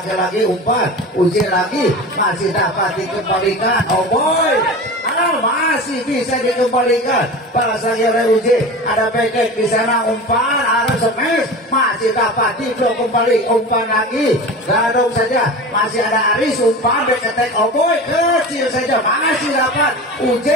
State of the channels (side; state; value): both; normal; correlation 0.31